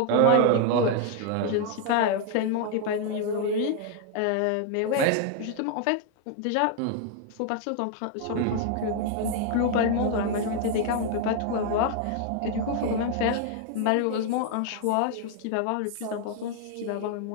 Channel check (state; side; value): different; both; correlation 0.00